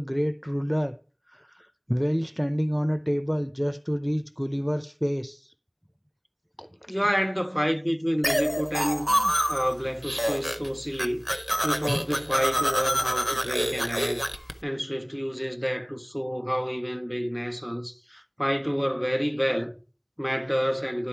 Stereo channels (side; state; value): both; identical; correlation 1.00